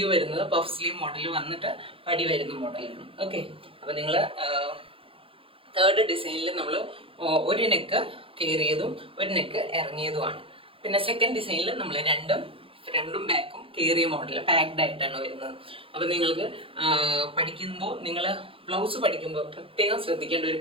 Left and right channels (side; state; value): left; late; 0.27 ms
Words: വരുന്നത് പഫ് സ്ലീവ് മോഡൽ വന്നിട്ട് പടി വരുന്ന മോഡലാണ്. ഓക്കെ, അപ്പോൾ നിങ്ങൾ തേർഡ് ഡിസൈനിൽ നമ്മൾ ഒരു നെക്ക് കയറിയതും ഒരു നെക്ക് ഇറങ്ങിയതുമാണ്. പിന്നെ സെക്കൻഡ് ഡിസൈനിൽ നമ്മൾ ഫ്രണ്ടും ബാക്കും കയറിയ മോഡൽ പാക്ഡ് ആയിട്ടാണ് വരുന്നത്. അപ്പോൾ നിങ്ങൾക്ക് പഠിക്കുമ്പോൾ, നിങ്ങൾ ബ്ലൗസ് പഠിക്കുമ്പോൾ പ്രത്യേകം ശ്രദ്ധിക്കേണ്ട ഒരു